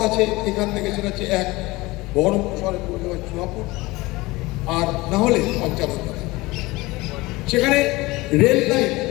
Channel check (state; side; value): quieter; right; 21.2 dB